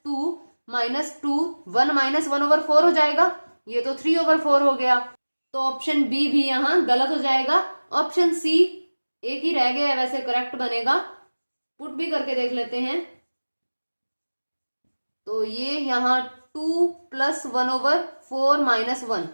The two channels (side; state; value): both; inverted; correlation -1.00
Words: 2 - 2 1 - 1/4 हो जाएगा, ये तो 3/4 हो गया, तो ऑप्शन बी भी यहां गलत हो जाएगा। ऑप्शन सी एक ही रह गया है, वैसे करेक्ट बनेगा, पुट भी करके देख लेते हैं। तो ये यहाँ 2 + 1/4 - 1,